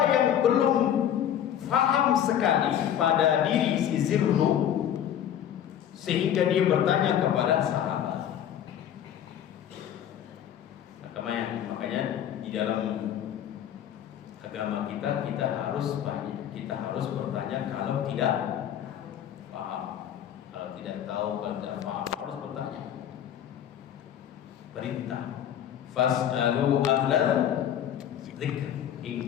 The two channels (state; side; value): quieter; right; 10.1 dB